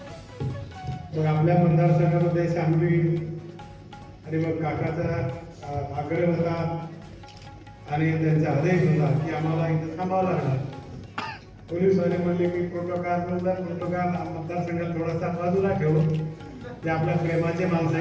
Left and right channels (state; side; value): identical; both; correlation 1.00